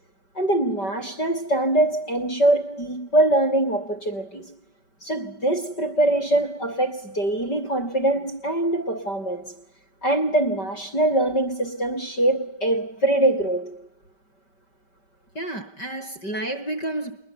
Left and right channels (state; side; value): late; right; 5.2 ms